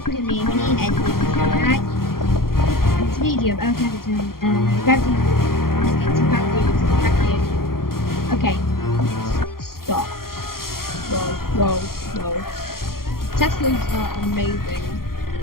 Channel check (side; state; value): right; late; 0.92 ms